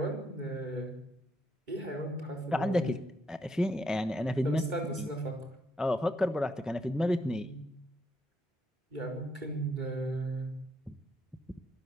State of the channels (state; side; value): normal; both; correlation 0.77